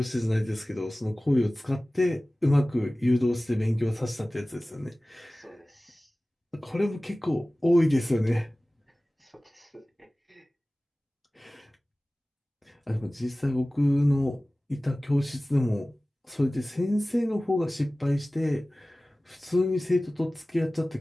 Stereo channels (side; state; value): both; normal; correlation 0.97